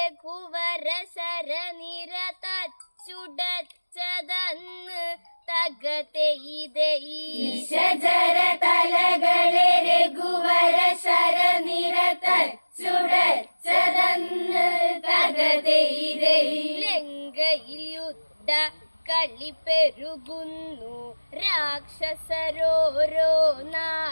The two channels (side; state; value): both; inverted; correlation -1.00